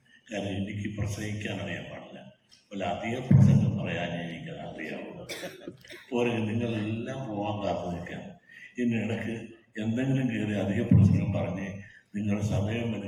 കാരണം എനിക്ക് പ്രസംഗിക്കാൻ അറിയാൻ പാടില്ല. അല്ല, അധികം പ്രസംഗം പറയാൻ എനിക്ക് അറിയാവുള്ളൂ. പോരെ നിങ്ങളെല്ലാം പോകാൻ കാത്തു നിൽക്കാം. ഇതിനിടയ്ക്ക് എന്തെങ്കിലും കയറി അധിക പ്രസംഗം പറഞ്ഞ് നിങ്ങൾ സമയം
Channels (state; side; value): identical; both; correlation 1.00